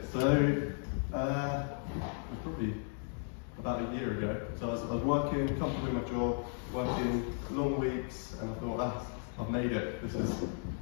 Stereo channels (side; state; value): right; silent; 54 dB below the other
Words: so it was probably about a year ago. So I was working, comfortable in my job, working long weeks, and I thought, I've made it. This is